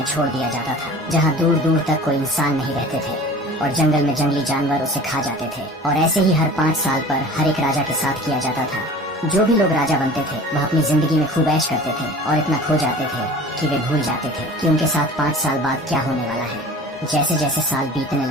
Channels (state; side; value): normal; both; correlation 0.41